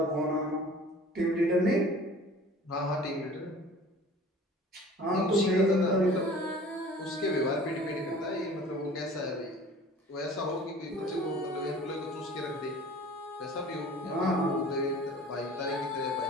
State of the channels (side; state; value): both; normal; correlation 0.45